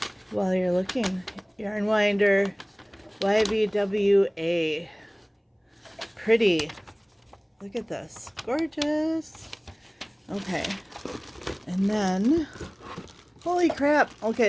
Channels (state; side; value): identical; both; correlation 1.00